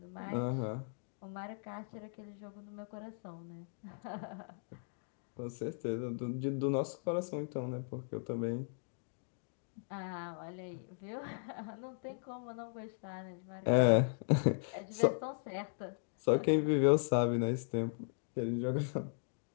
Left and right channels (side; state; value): right; silent; digital silence